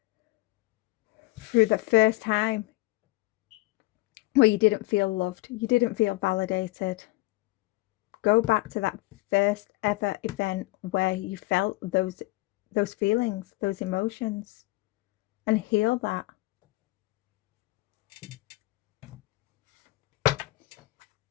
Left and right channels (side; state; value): right; quieter; 20.8 dB